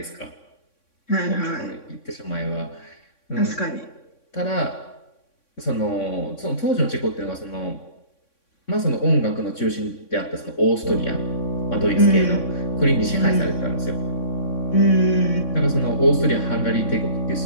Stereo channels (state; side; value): late; right; 3.6 ms